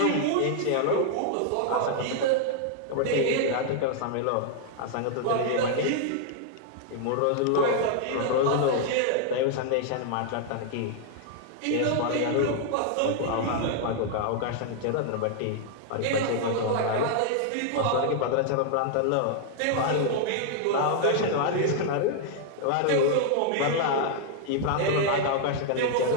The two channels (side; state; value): both; different; correlation 0.00